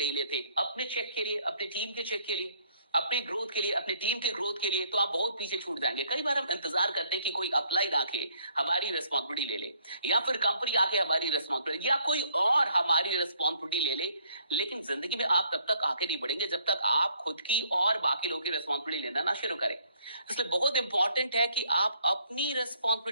लेते अपने चेक के लिए, अपने टीम के चेक के लिए, अपनी ग्रोथ के लिए, अपनी टीम के ग्रोथ के लिए, तो आप बहुत पीछे छूट जाएंगे। कई बार हम इंतजार करते हैं कि कोई अपलाइन आके हमारी रिस्पॉन्सिबिलिटी ले ले, या फिर कंपनी आके हमारी रिस्पॉन्सिबिलिटी, या कोई और हमारी रिस्पॉन्सिबिलिटी ले ले, लेकिन जिंदगी में आप तब तक आगे नहीं बढ़ेंगे जब तक आप खुद की और बाकी लोगों की रिस्पॉन्सिबिलिटी लेना ना शुरू करें। इसलिए बहुत इंपॉर्टेंट है कि आप अपनी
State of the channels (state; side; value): inverted; both; correlation -0.65